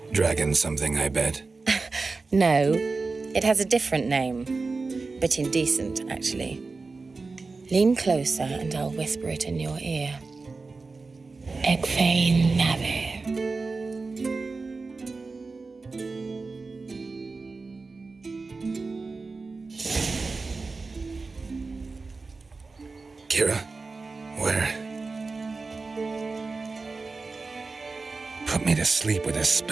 Dragon something, I bet. No, it has a different name. But indecent, actually. Lean closer and I'll whisper it in your ear. Egfain Nave. Kira? Where? Put me to sleep with a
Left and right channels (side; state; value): left; quieter; 4.0 dB